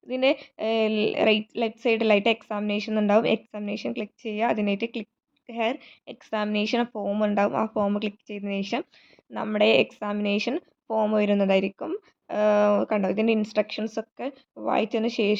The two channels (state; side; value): identical; both; correlation 1.00